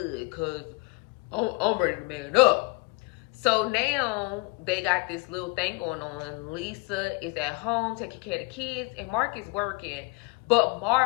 because I'm ready to man up. So now they got this little thing going on. Lisa is at home taking care of the kids, and Mark is working. But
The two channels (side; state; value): right; quieter; 28.1 dB